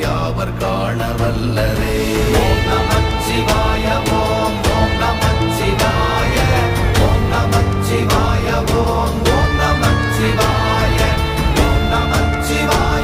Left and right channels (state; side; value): identical; both; correlation 1.00